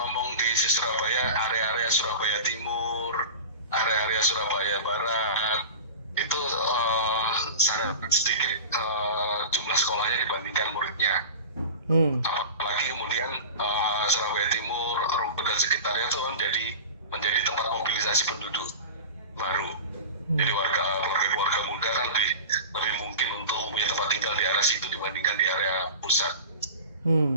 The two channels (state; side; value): inverted; both; correlation -0.33